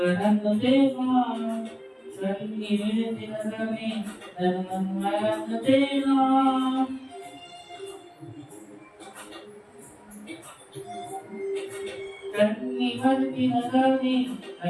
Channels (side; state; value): both; identical; correlation 1.00